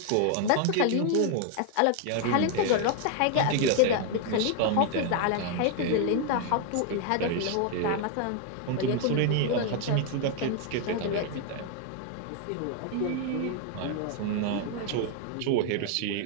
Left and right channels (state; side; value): different; both; correlation 0.00